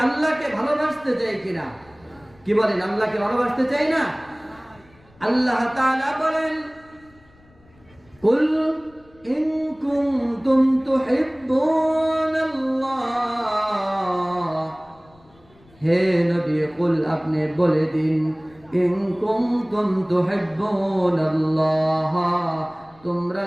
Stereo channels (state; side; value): noise; left; rumble, 29 dB below the sound